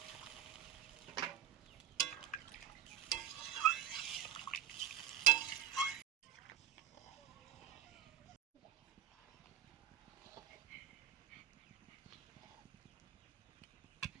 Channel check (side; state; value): left; quieter; 10.7 dB